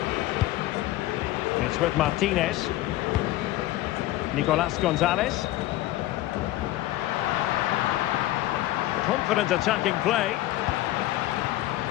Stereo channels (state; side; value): quieter; right; 15.9 dB